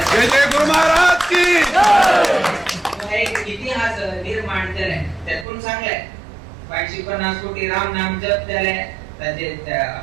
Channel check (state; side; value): drops out; left; at 5.5 s